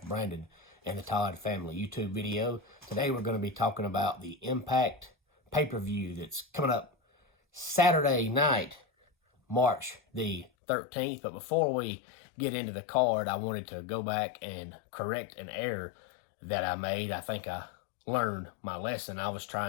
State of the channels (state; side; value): drops out; right; at 10.5 s